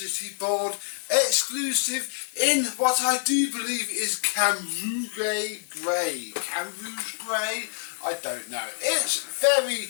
board exclusive in what I do believe is Camouflage Grey. Camouflage Grey? I don't know. It's very,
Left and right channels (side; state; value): right; silent; digital silence